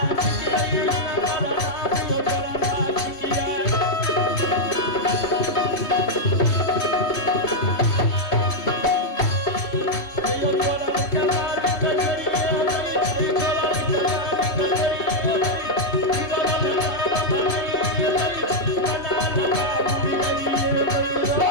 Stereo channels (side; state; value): right; late; 3.0 ms